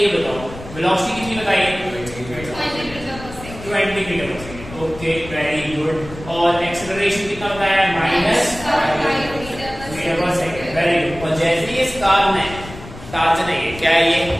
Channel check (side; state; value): left; noise; rumble, 14 dB below the sound